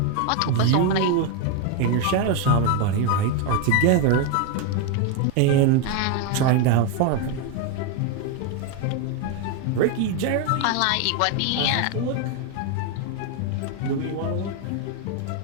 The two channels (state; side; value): different; both; correlation 0.02